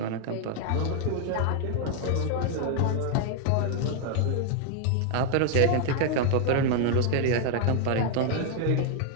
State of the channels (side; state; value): both; different; correlation 0.00